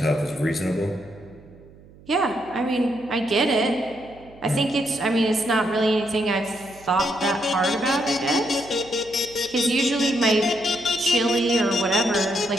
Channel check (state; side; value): noise; right; hum, 23 dB below the sound